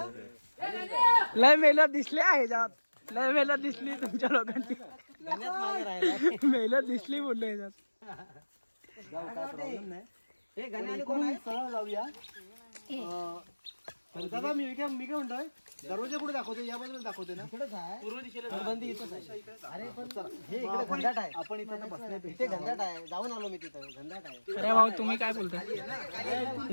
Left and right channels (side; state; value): both; inverted; correlation -1.00